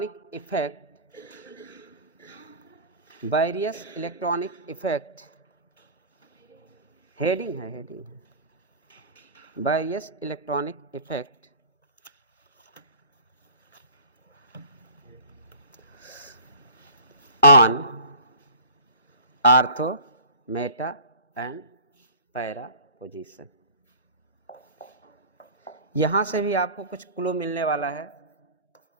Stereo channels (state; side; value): inverted; both; correlation -0.41